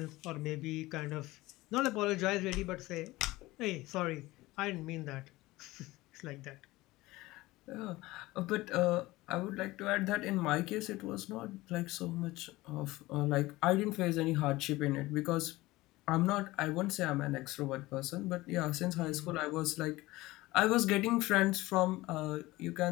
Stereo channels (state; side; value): quieter; right; 19.3 dB